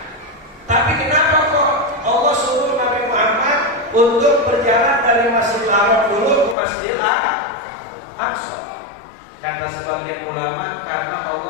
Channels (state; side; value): drops out; right; at 6.6 s